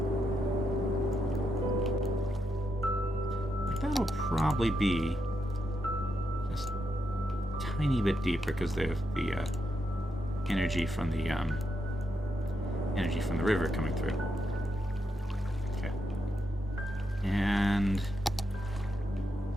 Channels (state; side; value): normal; both; correlation 0.83